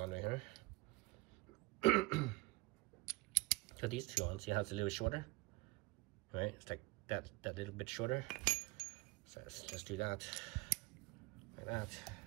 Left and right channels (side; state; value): left; quieter; 23.2 dB